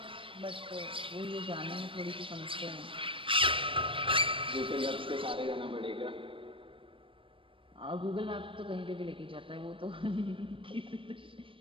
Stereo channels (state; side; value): late; left; 0.25 ms